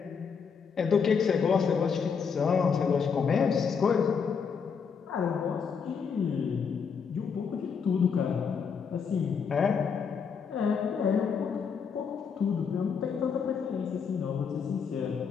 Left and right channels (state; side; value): quieter; right; 6.3 dB